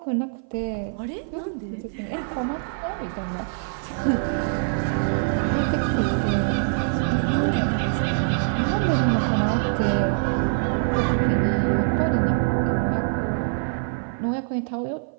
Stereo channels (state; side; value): silent; left; 56 dB below the other